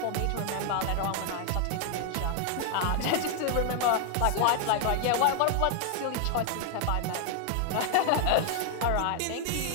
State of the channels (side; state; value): both; different; correlation 0.00